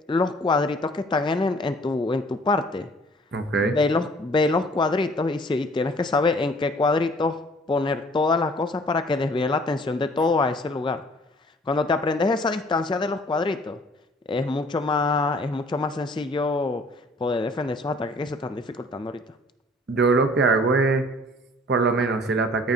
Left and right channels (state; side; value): normal; both; correlation 0.54